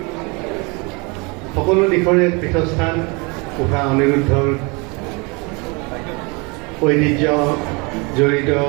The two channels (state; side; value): quieter; left; 29.1 dB